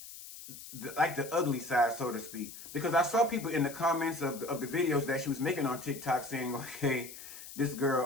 like the ugly side, so to speak. Because I saw people in the comments of the videos that she was making on TikTok saying, okay, this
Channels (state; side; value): noise; left; hiss, 14 dB below the sound